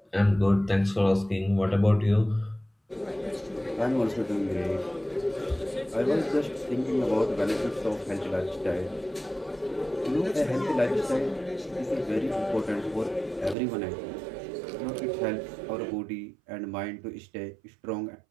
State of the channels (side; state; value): left; drops out; at 13.6 s